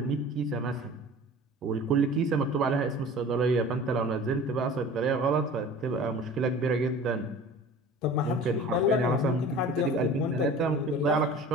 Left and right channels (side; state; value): both; normal; correlation 0.41